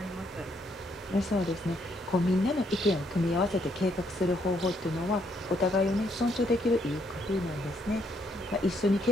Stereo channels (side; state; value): both; normal; correlation 0.72